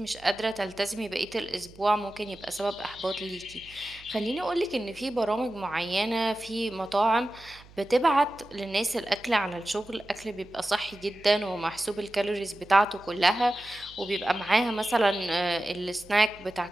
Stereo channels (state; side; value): noise; right; hum, 23 dB below the sound